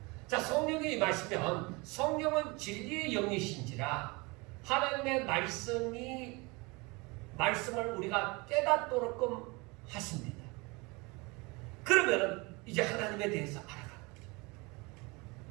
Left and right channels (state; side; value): quieter; left; 26.5 dB